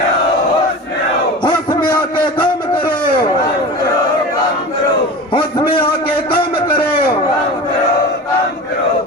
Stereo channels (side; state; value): both; normal; correlation 0.32